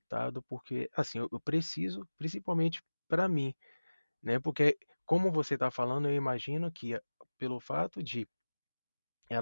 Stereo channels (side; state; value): both; inverted; correlation -1.00